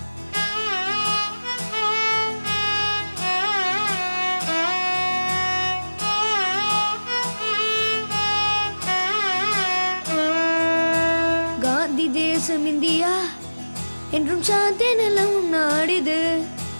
காந்தி தேசம் இந்தியா என்றும் சாந்தி நிலவும் நாடிது.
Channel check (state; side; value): inverted; both; correlation -1.00